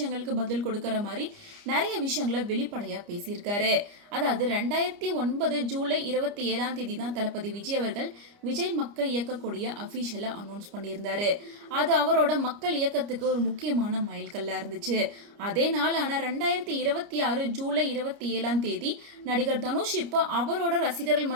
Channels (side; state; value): left; late; 29 ms